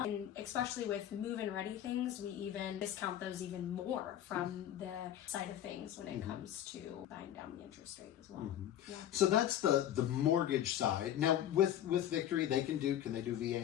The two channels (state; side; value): quieter; right; 11.3 dB